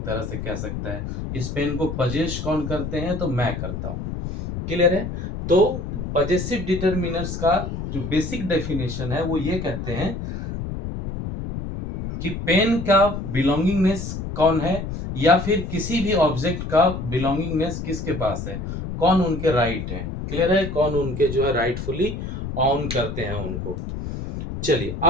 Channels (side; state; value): left; noise; rumble, 6 dB below the sound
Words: तरह से कह सकता है। इस पेन को पजेश कौन करते हैं, तो मैं करता हूँ। क्लियर है? तो पजेसिव डिटरमिनर्स का जो बेसिक डेफिनेशन है वो ये कहते हैं कि पेन का बिलोंगिंगनेस कौन है, या फिर किसी भी ऑब्जेक्ट का बिलोंगिंगनेस किसके पास है, कौन उनके राइट है। क्लियर है, कौन उनके जो है राइटफुली ऑन करते हैं उनको। चलिए